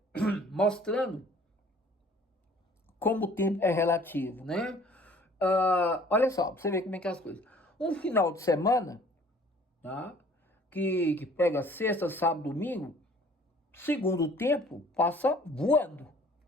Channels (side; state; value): both; normal; correlation 0.53